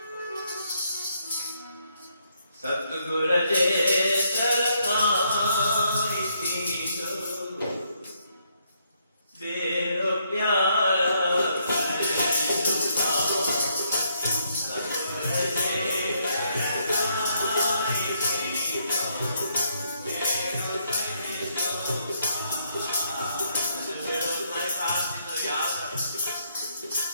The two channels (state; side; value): inverted; both; correlation -0.73